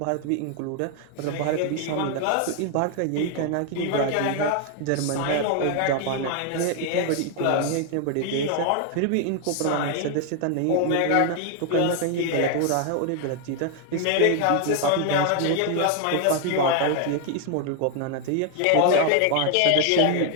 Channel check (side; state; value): both; different; correlation 0.00